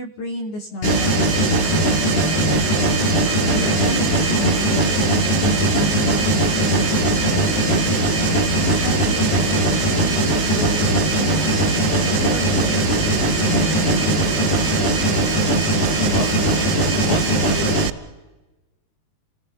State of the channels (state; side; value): late; right; 19 ms